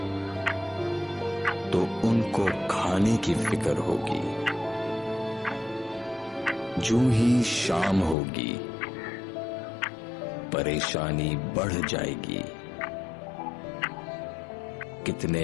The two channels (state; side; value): drops out; right; at 8.2 s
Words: तो उनको खाने की फिक्र होगी। जूं ही शाम होगी परेशानी बढ़ जाएगी, कितने